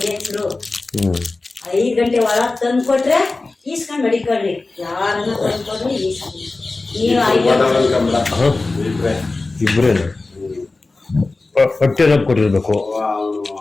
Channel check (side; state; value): right; quieter; 3.4 dB